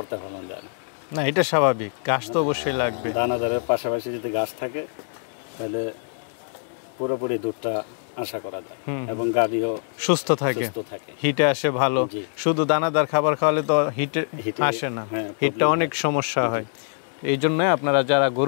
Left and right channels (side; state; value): right; silent; digital silence